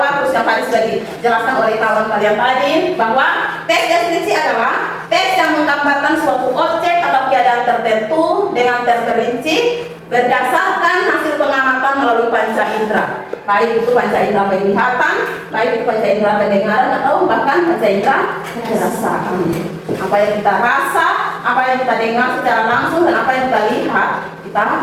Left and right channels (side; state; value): both; identical; correlation 1.00